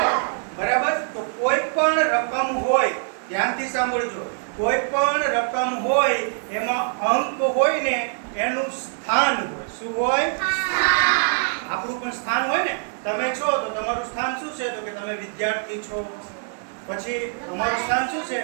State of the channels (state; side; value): silent; left; 63 dB below the other